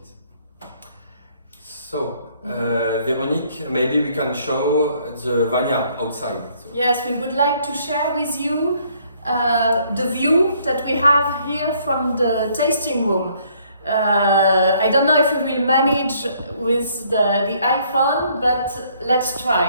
So, Véronique, maybe we can show the vineyard outside. So. Yes, we would like to share with you the view that we have here from the tasting room. I don't know if we will manage with the iPhone, but let's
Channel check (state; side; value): inverted; both; correlation -0.65